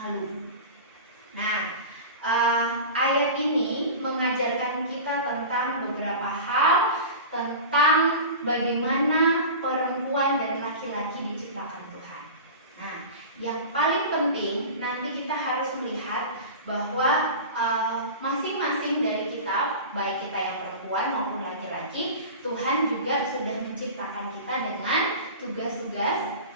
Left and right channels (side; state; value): both; inverted; correlation -0.33